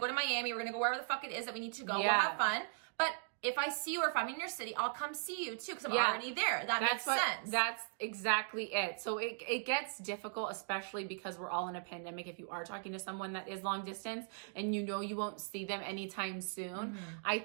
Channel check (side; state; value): left; silent; digital silence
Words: Miami. We're going to go wherever the fuck it is that we need to go. We'll have fun. But if I see you or if I'm in your city, I'll come see you too, because I'm already there. That makes sense. That's exactly it. So it gets difficult, especially because we're all in a pandemic. If you are talking to someone that is long distance and you know you won't see them anytime soon, I